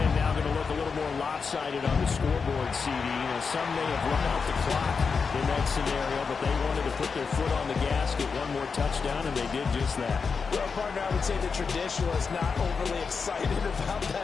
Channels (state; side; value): quieter; right; 5.3 dB